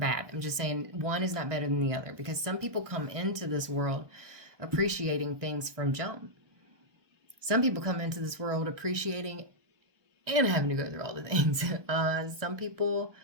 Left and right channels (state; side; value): late; left; 1.2 ms